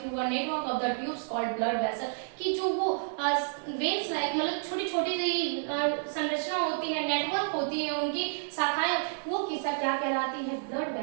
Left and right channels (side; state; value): left; silent; 58 dB below the other